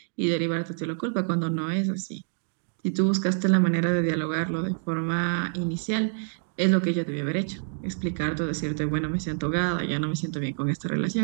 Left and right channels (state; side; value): silent; left; digital silence